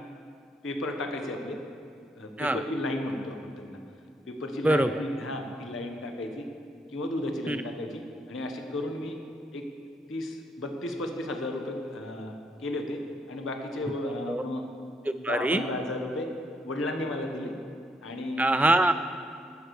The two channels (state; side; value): normal; both; correlation 0.74